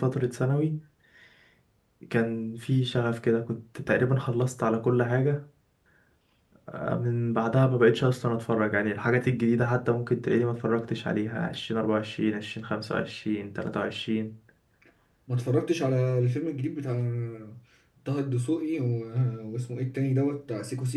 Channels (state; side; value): identical; both; correlation 1.00